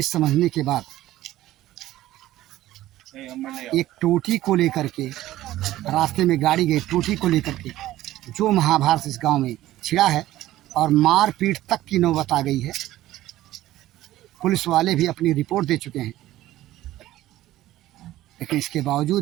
समझने के बाद एक टोटी को लेकर के रास्ते में गाड़ी गई, टोटी को लेकर के जो महाभारत इस गांव में छिड़ा है और मारपीट तक की नौबत आ गई है। पुलिस वाले भी अपनी रिपोर्ट दे चुके हैं, लेकिन इसके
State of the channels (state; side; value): quieter; left; 15.1 dB